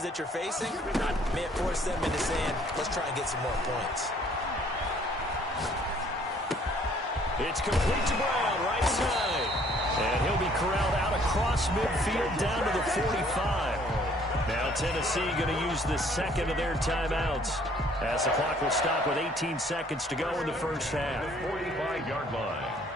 that you're facing may have forced them into saying, let's try and get some more points. It's complete to Brown, right side. And he'll be corralled out across midfield down to the 45. Now Tennessee going to use the second of their timeouts, as the clock will stop with 18 seconds to go in the first half. 45-yard line.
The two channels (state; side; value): normal; both; correlation 0.60